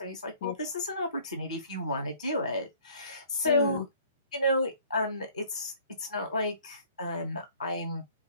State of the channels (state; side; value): inverted; both; correlation -0.56